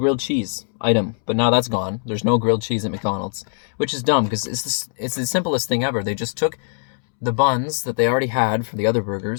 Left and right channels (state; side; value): silent; right; 65 dB below the other